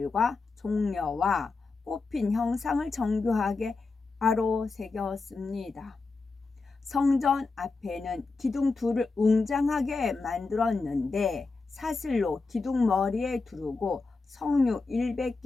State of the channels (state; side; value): quieter; right; 3.9 dB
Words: 종려와 꽃핀 형상을 정교하게 바로 새겼습니다. 성전 앞에는 기둥 둘을 웅장하게 만들었는데 사슬로 기둥 머리에 두르고 석류